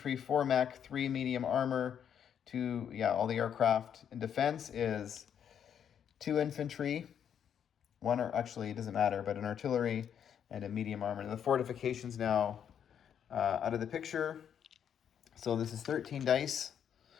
4 mech, 3 medium armor, 2, all the aircraft. In defense is 2 infantry, 1, or actually it doesn't matter, but an artillery and a medium armor. And the fortifications now out of the picture. So this is 13 dice,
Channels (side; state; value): right; quieter; 8.6 dB